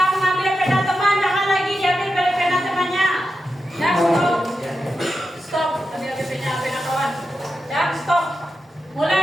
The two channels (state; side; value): normal; both; correlation 0.89